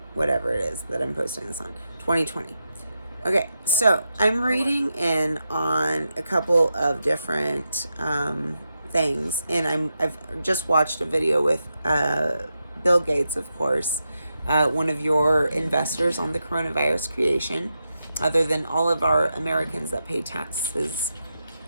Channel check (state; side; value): inverted; both; correlation -0.87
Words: whatever it is that I'm posting this on, 2020. Okay, so I'm reading in on a couple of different things, and I've just watched a video with Bill Gates, of course, one of your investors on the coronavirus creation. Other than all of our Americans that pay taxes,